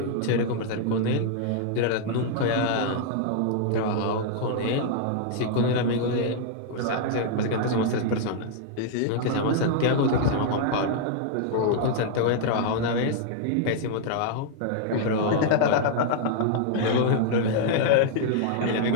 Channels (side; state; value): both; different; correlation -0.01